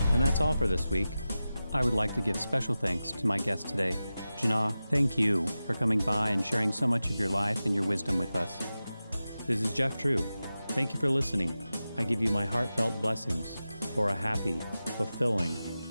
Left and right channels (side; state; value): both; inverted; correlation -0.94